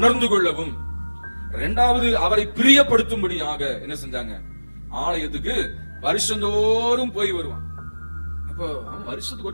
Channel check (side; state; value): both; inverted; correlation -1.00